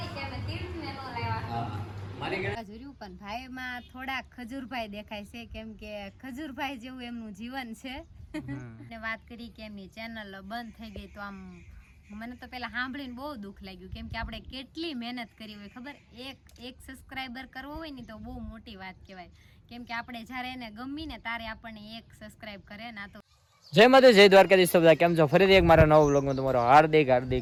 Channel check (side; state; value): both; identical; correlation 1.00